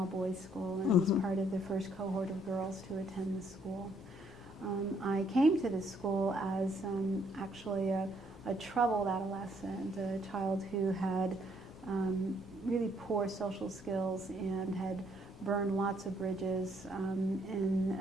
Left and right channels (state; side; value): normal; both; correlation 0.68